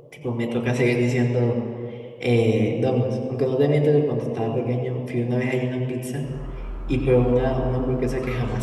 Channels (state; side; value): identical; both; correlation 1.00